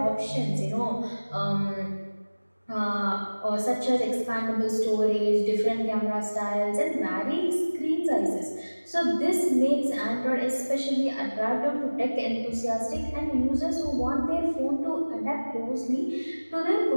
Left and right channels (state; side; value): inverted; both; correlation -1.00